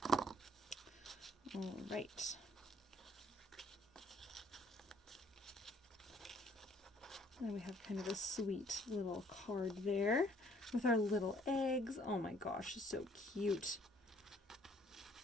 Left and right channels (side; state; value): both; normal; correlation 0.61